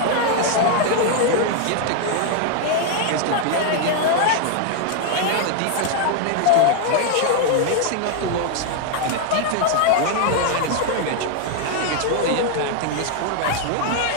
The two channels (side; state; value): both; different; correlation 0.00